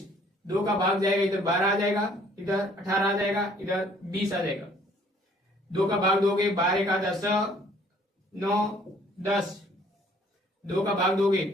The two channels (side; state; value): both; normal; correlation 0.59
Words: 2 का भाग जाएगा, इधर 12 आ जाएगा, इधर 18 आ जाएगा, इधर 20 आ जाएगा। 2 का भाग दोगे, 12 का 10, 9, 10। 2 का भाग दोगे